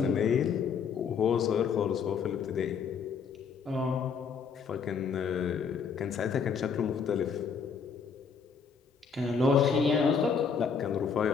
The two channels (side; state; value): right; quieter; 6.1 dB